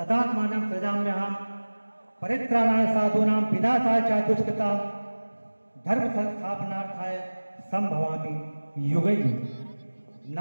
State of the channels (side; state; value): both; inverted; correlation -1.00